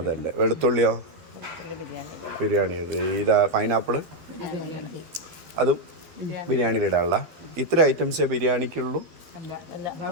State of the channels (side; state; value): left; late; 12 ms